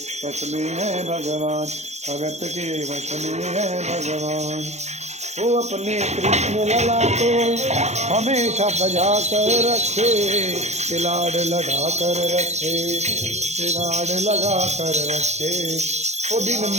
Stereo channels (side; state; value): left; late; 0.33 ms